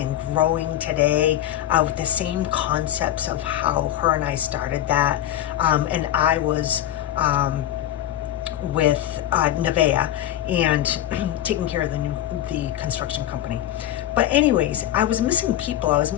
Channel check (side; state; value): right; quieter; 12.3 dB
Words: growing today, with the same concepts of how her and I started that. And I was with Nevea and taking care of the construction company. But anyways, I was missing people. I was